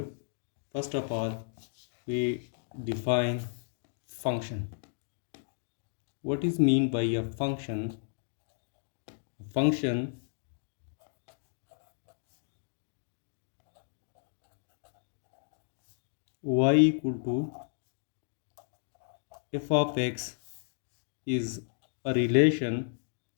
First of all, we define function. What is mean by a function? Function y equal to f of x is a relation,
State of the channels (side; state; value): right; silent; digital silence